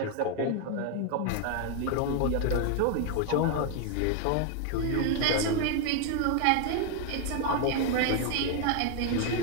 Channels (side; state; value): both; different; correlation 0.01